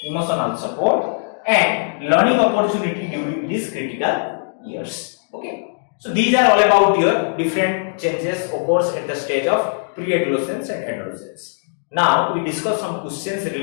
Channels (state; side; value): silent; right; digital silence